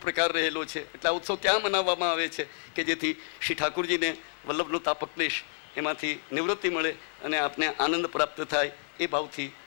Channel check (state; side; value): silent; right; 58 dB below the other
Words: રહેલો છે. એટલે આ ઉત્સવ ત્યાં મનાવવામાં આવે છે કે જેથી શ્રી ઠાકુરજીને વલ્લભનો તાપક્લેશ એમાંથી નિવૃત્તિ મળે અને આપને આનંદ પ્રાપ્ત થાય. એ ભાવથી